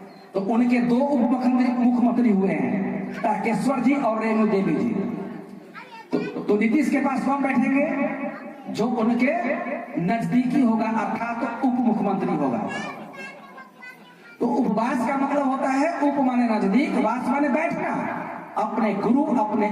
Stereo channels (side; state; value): both; identical; correlation 1.00